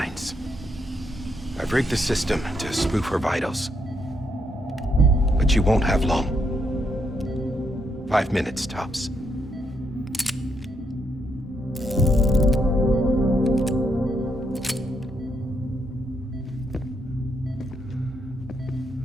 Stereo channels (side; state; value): both; normal; correlation 0.77